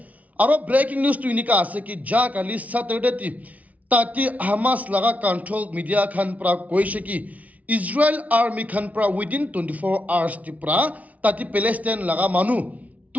और ब्रेकिंग न्यूज़ तो इनका आसे कि जा काली सैटरडे ती ताकि हमास लगा कंट्रोल मीडिया खान प्रा कोई शकी इजराइल आर्मी खान प्रा विदिन 24 आवर्स ती प्रा ताकि पैलेस्टाइन लगा मानु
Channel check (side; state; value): left; late; 0.070 ms